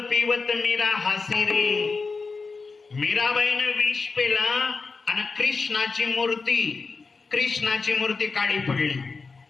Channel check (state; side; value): quieter; right; 4.4 dB